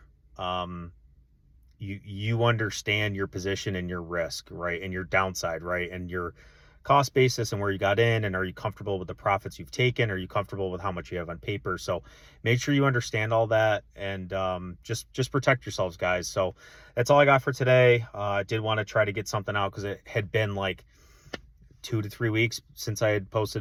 you understand your position and your risk, right, and your downside, right, and your cost basis and where you got in, and are you comfortable with the profits you've taken? Are you comfortable with how much you have on paper? So make sure you understand all that, and just protect yourselves, guys. So that's all I got for today. I did want to try to get something out because it had been like 2 to 3 weeks since I had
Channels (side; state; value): both; identical; correlation 1.00